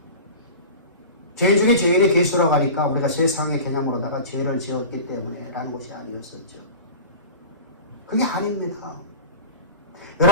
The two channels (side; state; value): both; inverted; correlation -0.32